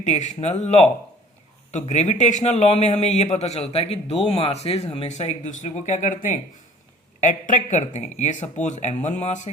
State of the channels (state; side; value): normal; both; correlation 0.50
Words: law. तो ग्रेविटेशनल लॉ में हमें यह पता चलता है कि दो मासेस हमेशा एक दूसरे को क्या करते हैं, अट्रैक्ट करते हैं। ये सपोज m1 मास